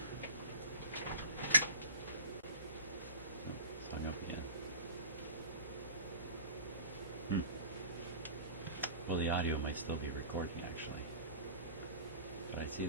Oh, sign off again. Well, the audio might still be recording actually, but I see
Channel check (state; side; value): inverted; both; correlation -0.34